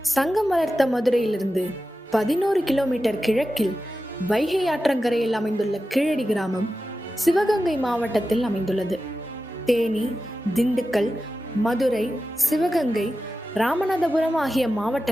சங்கம் வளர்த்த மதுரையிலிருந்து 11 கிலோமீட்டர் கிழக்கில் வைகை ஆற்றங்கரையில் அமைந்துள்ள கீழடி கிராமம் சிவகங்கை மாவட்டத்தில் அமைந்துள்ளது. தேனி, திண்டுக்கல், மதுரை, சிவகங்கை, ராமநாதபுரம் ஆகிய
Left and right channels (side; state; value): both; normal; correlation 0.92